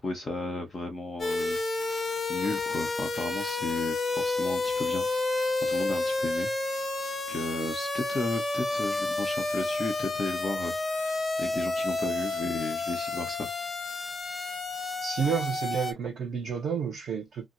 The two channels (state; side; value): normal; both; correlation 0.84